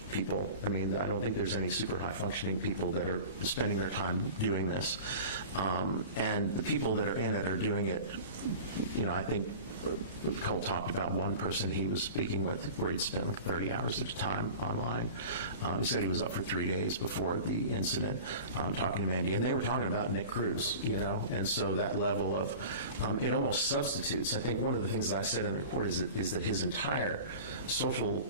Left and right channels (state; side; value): inverted; both; correlation -0.37